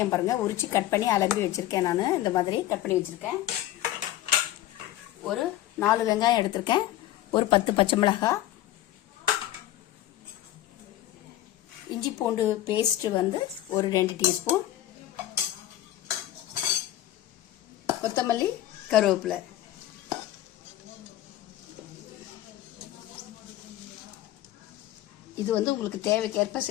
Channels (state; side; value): quieter; right; 14.0 dB